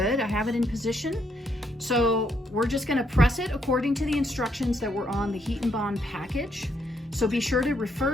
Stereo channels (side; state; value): both; normal; correlation 0.74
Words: I have it in position. So we're just gonna press it according to the instructions that were on the Heat and Bond package. So be sure to